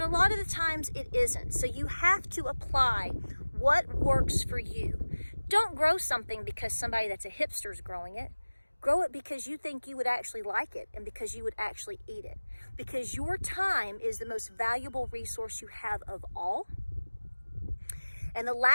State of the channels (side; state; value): both; inverted; correlation -1.00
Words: a lot of the times it isn't. So you have to apply what works for you. Don't grow something because somebody that's a hipster is growing it. Grow it because you think you would actually like it and because you would actually eat it. Because your time is the most valuable resource you have of all. And the